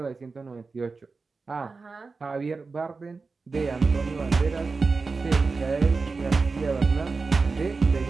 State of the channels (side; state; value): left; quieter; 4.2 dB